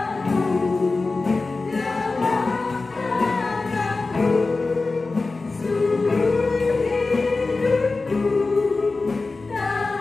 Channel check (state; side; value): quieter; right; 3.7 dB